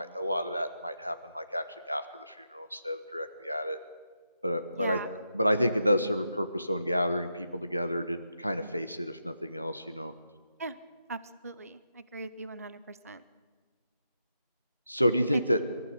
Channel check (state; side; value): inverted; both; correlation -0.84